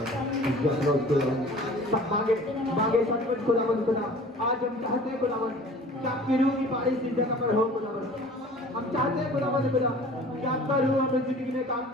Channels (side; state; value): both; normal; correlation 0.45